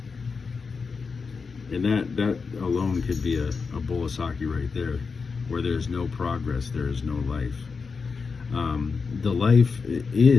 And that alone could be a bowl of sake right there. Where there is no progress, there is no life. The life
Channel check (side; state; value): right; quieter; 5.0 dB